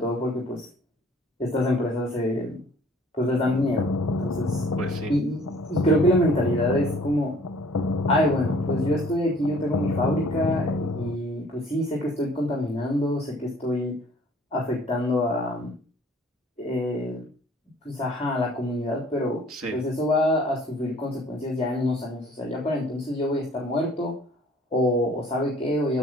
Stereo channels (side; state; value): both; normal; correlation 0.54